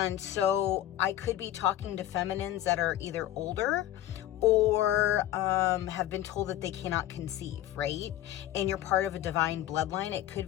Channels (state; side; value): quieter; right; 13.4 dB